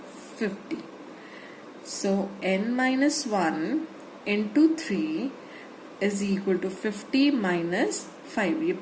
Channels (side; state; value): both; identical; correlation 1.00